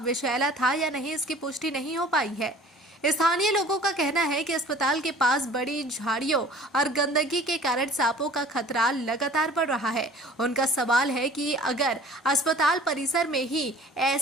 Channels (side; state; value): both; normal; correlation 0.48